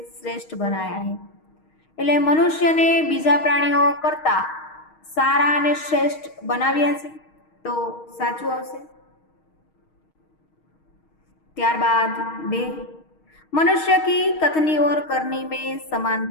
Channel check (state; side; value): late; right; 6.4 ms